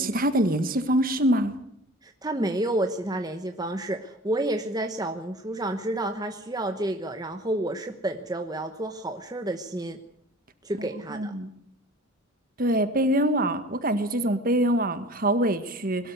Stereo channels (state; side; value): normal; both; correlation 0.44